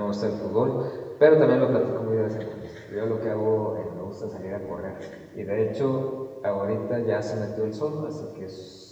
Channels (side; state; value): both; identical; correlation 1.00